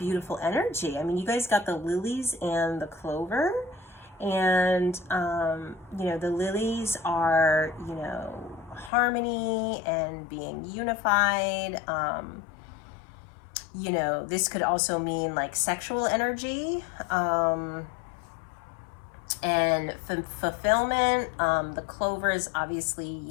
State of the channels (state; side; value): drops out; right; at 8.9 s